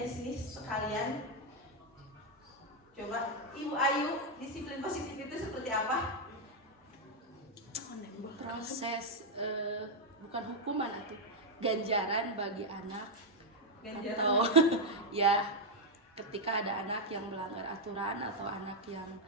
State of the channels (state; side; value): normal; both; correlation 0.01